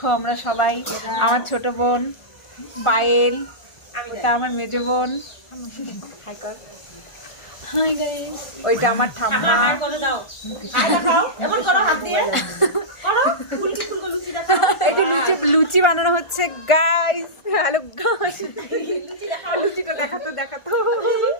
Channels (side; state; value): right; late; 1.4 ms